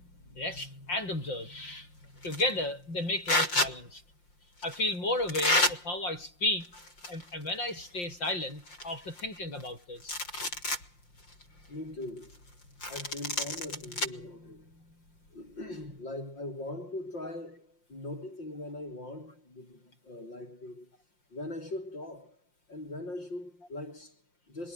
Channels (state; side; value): late; right; 5.7 ms